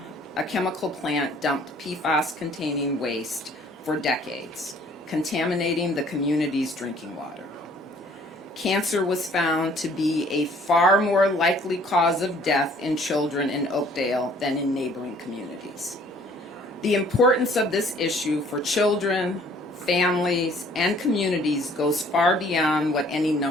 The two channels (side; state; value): both; normal; correlation 0.57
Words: a chemical plant dumped PFAS-containing waste for decades, contaminating the community's drinking water. Cancer was found to be a far more likely cause of death in children in Oakdale than in neighboring communities. The importance of this issue for children, families, and communities goes far beyond what any